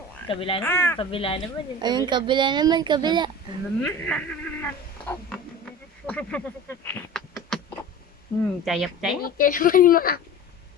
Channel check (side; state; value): both; normal; correlation 0.36